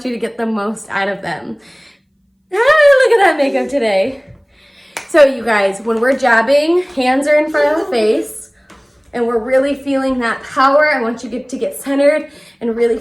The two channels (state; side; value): identical; both; correlation 1.00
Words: you to get the most out of them. Ah, look at that makeup today. So you guys, when we're jabbing, hands are in front of the face and we're really feeling that power. I want you to get centered and really